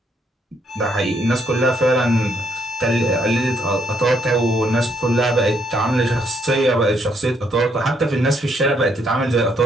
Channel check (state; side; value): normal; both; correlation 0.72